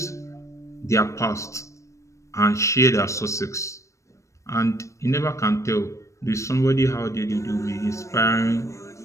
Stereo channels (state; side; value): late; right; 0.15 ms